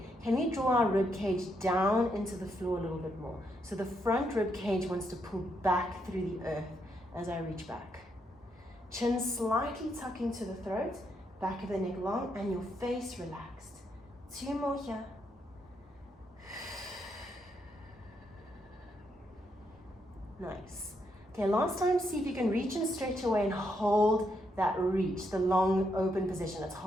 can we draw our rib cage down into the floor a little bit more? So the front rib cage wants to pull back through the earth as I reach back. Chin slightly tucking to the throat, back of the neck long, and your face relaxed. 2 more here. Nice. Okay, last time, see if you can reach and stretch away and hold that reach, the long open position. It's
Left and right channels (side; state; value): both; normal; correlation 0.78